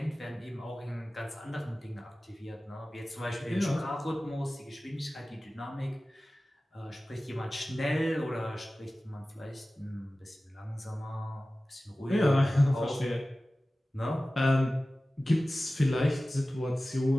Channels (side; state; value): both; normal; correlation 0.96